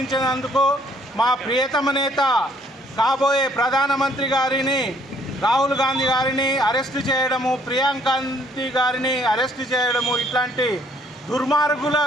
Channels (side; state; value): both; normal; correlation 0.63